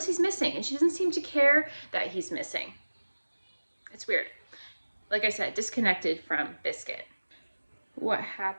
he's missing, and she doesn't seem to care that he's missing. It's weird. Like I said, disconnected from Biscuit. What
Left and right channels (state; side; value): inverted; both; correlation -1.00